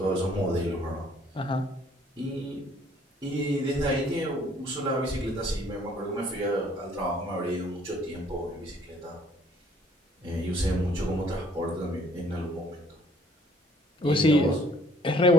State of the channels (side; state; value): both; normal; correlation 0.59